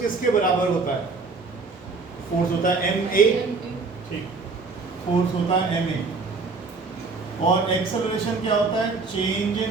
किसके बराबर होता है? फोर्स होता है ma. ठीक, फोर्स होता है ma. और एक्सेलरेशन क्या होता है? Change in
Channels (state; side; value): quieter; left; 4.1 dB